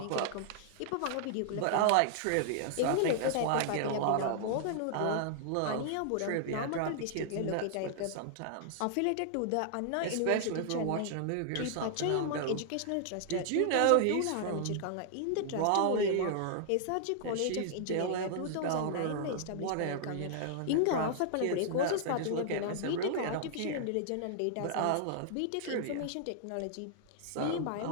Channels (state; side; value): different; both; correlation -0.01